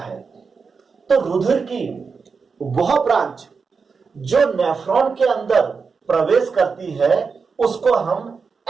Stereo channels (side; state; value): left; quieter; 5.2 dB